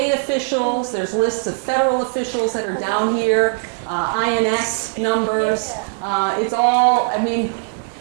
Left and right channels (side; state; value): left; silent; 56 dB below the other